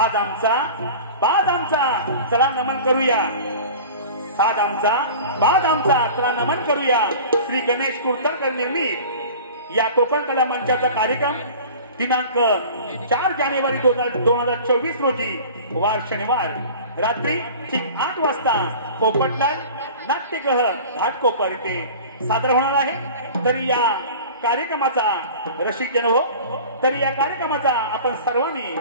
आमचा बाज आमचा चला नमन करूया. साज आमचा बाज आमचा चला नमन करूया. श्री गणेश कुर्तनकर निर्मित या कोकण कला मंचाचा कार्यक्रम दिनांक 4 जानेवारी 2024 रोजी वार शनिवार रात्री ठीक 8 वाजता पोपटलाल नाट्यगृह घाटकोपर येथे सादर होणार आहे. तरी या कार्यक्रमाचा रसिक जन हो, तरी या कार्यक्रमाचा आपण सर्वांनी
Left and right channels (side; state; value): both; inverted; correlation -0.40